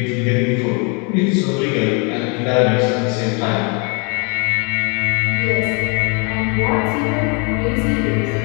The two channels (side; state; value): right; quieter; 33.9 dB